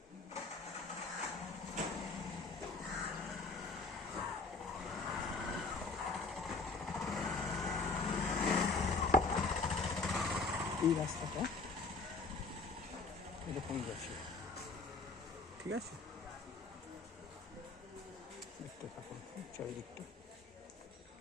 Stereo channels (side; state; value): right; quieter; 3.9 dB